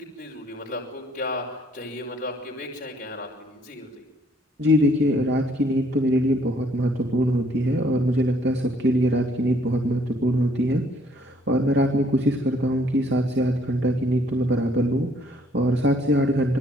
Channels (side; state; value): both; normal; correlation 0.65